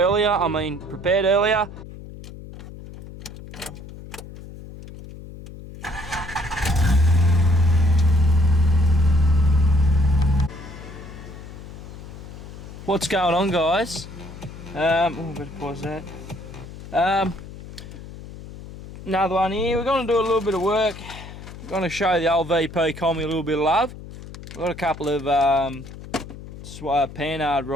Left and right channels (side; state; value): left; noise; hum, 14 dB below the sound